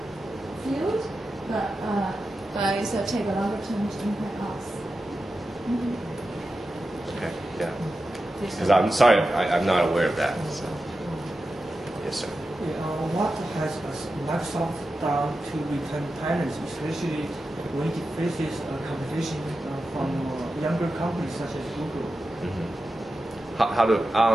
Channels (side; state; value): both; normal; correlation 0.91